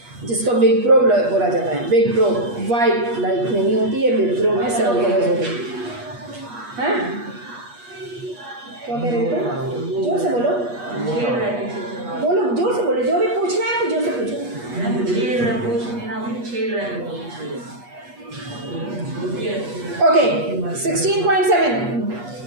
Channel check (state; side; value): late; left; 8.3 ms